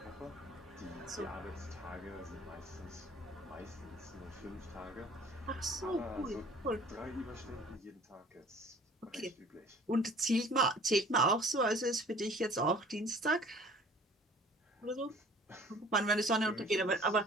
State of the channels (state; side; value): normal; both; correlation 0.50